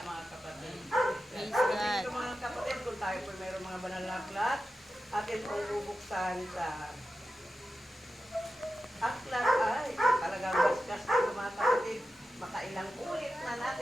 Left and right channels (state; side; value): normal; both; correlation 0.92